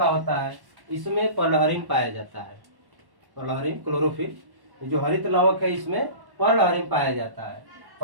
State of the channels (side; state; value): left; late; 1.1 ms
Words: होता है। इसमें पर्लहरिन पाया जाता है, पर्लहरिन क्लोरोफिल। जो हरित लवक है इसमें पर्लहरिन पाया जाता है।